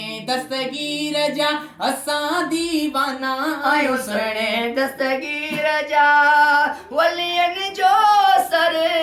दस्तगीर जा असां दीवाना आयूं सुहिणे दस्तगीर जा वलियनि जो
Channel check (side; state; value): both; identical; correlation 1.00